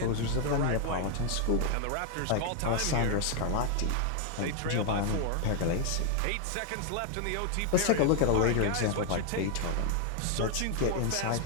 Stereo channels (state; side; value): different; both; correlation 0.00